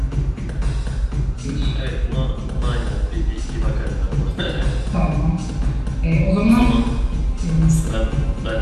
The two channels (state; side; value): identical; both; correlation 1.00